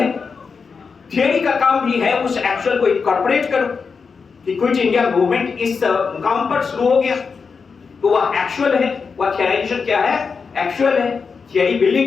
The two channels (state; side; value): quieter; right; 5.3 dB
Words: थियरी का काम भी है उस एक्चुअल को इनकॉर्पोरेट करो कि क्विट इंडिया मूवमेंट इस मुकाम पर शुरू हो गया, तो वह एक्चुअल है। वह थियराइजेशन क्या है? एक्चुअल है। थियरी